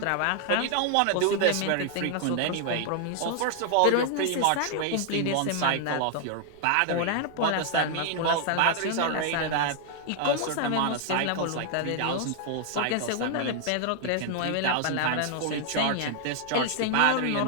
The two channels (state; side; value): different; both; correlation 0.00